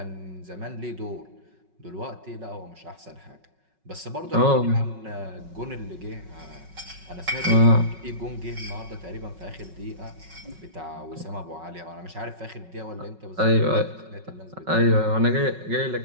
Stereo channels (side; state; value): left; late; 5.4 ms